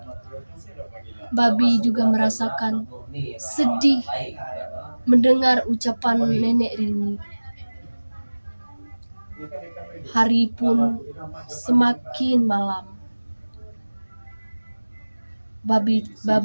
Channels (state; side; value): inverted; both; correlation -1.00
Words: Babi juga merasakan sedih mendengar ucapan Nenek Rini. Hari pun semakin malam.